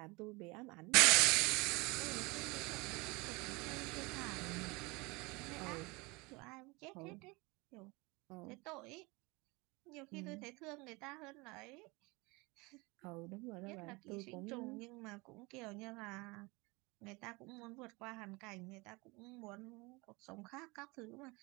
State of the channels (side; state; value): left; quieter; 25.6 dB